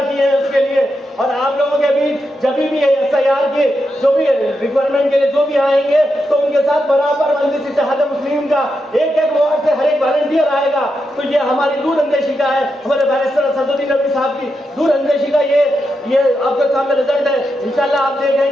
किए हैं उसके लिए। और आप लोगों के बीच जब भी SIR के जो भी रिक्वायरमेंट के लिए जो भी आएंगे तो उनके साथ बराबर मजलिस इत्तेहाद मुस्लिमीन का एक वार्ड से हर एक वॉलंटियर आएगा तो ये हमारी दूरअंदेशी का है, हमारे बैरिस्टर असदुद्दीन नबी साहब की दूरअंदेशी का ये आपके सामने रिजल्ट है। इंशाल्लाह आप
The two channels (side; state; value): both; normal; correlation 0.86